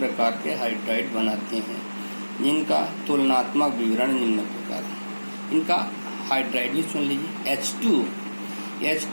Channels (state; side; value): inverted; both; correlation -1.00